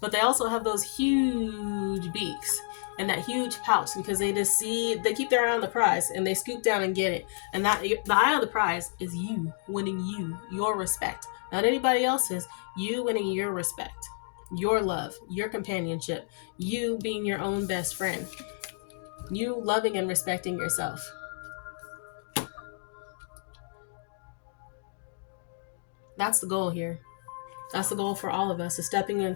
they also have those huge beaks and that huge pouch, because they keep their eye on the prize and they scoop down and get it. And that the eye on the prize is you winning your respect. Not anybody else's, you winning your respect, your love, your companionship, you being your own best friend, you loving and respecting yourself. That's the goal here. That's the goal for all of us, is stepping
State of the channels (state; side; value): silent; right; digital silence